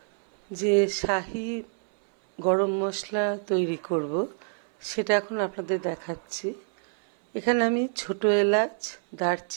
যে শাহি গরম মশলা তৈরি করব সেটা এখন আপনাদের দেখাচ্ছি। এখানে আমি ছোট এলাচ,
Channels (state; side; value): silent; left; 60 dB below the other